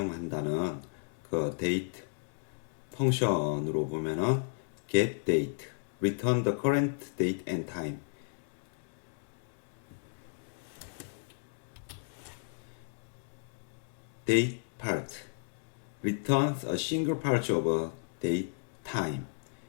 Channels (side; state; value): right; silent; digital silence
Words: 그 데이트 펑션으로 보면은 get date, return the current date and time. date part returns a single part of a date time.